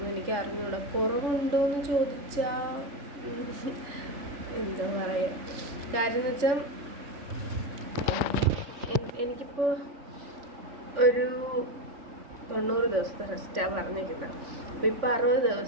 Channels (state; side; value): late; left; 3.5 ms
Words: എനിക്ക് അറിഞ്ഞൂടാ. കുറവുണ്ടോ എന്ന് ചോദിച്ചാൽ എന്താ പറയുക, കാര്യം എന്ന് വെച്ചാൽ എനിക്കിപ്പോൾ ഒരു 90 ദിവസത്തെ റെസ്റ്റാണ് പറഞ്ഞിരിക്കുന്നത്. അപ്പോൾ ഇപ്പോൾ 60